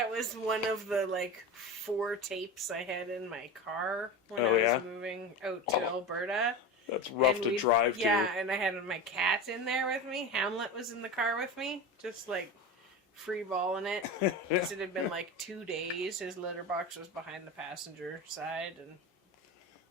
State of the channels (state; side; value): normal; both; correlation 0.26